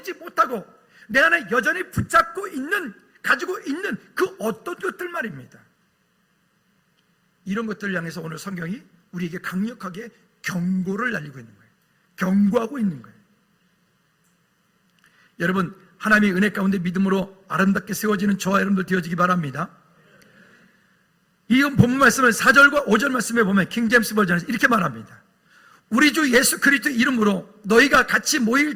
못하고 내 안에 여전히 붙잡고 있는, 가지고 있는 그 어떤 것들 말입니다. 이런 것들을 향해서 오늘 성경이 우리에게 강력하게 경고를 날리고 있는 거예요. 경고하고 있는 거예요. 여러분, 하나님의 은혜 가운데 믿음으로 아름답게 세워지는 저와 여러분들 되어지기 바랍니다. 이 본문 말씀을 4절과 5절 말씀에 보면 킹제임스 버전에서 이렇게 말합니다. 우리 주 예수 그리스도 이름으로 너희가 같이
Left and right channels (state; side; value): identical; both; correlation 1.00